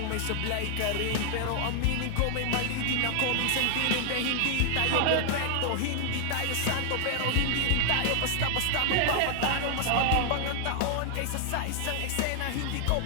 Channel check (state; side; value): different; both; correlation 0.00